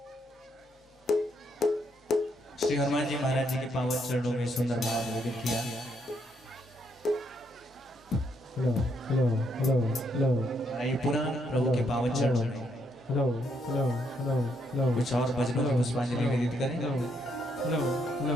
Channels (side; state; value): both; normal; correlation 0.75